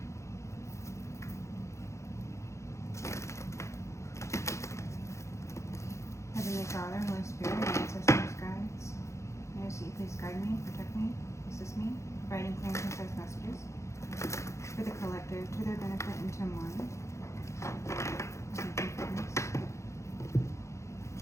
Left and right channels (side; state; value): right; late; 0.14 ms